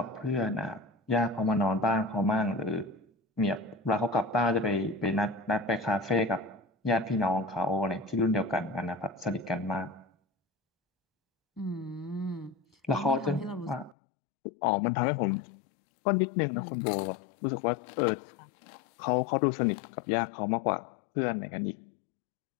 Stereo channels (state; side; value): drops out; right; at 14.0 s